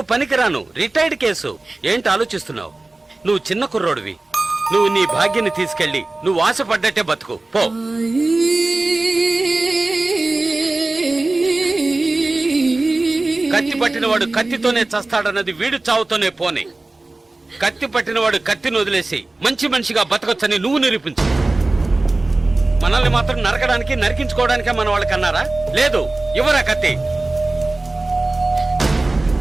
పనికిరాను, రిటైర్డ్ కేసు. ఏంటి ఆలోచిస్తున్నావు? నువ్వు చిన్న కుర్రోడివి. నువ్వు నీ భాగ్యాన్ని తీసుకెళ్ళి నువ్వు ఆశపడ్డట్టే బతుకు పో. కత్తి పట్టినవాడు కత్తితోనే చస్తాడన్నది వీడు చావుతోనే పోనీ. కత్తి పట్టినవాడు కత్తిని వదిలేసి మంచి మనిషిగా బతకొచ్చని నువ్వు నిరూపించు. మనల్ని మాత్రం నరకడానికి, నరికించుకోవడానికే మన వాళ్ళకి అన్నారా? లేదు. ఇవ్వరా కత్తి,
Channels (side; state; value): left; quieter; 3.1 dB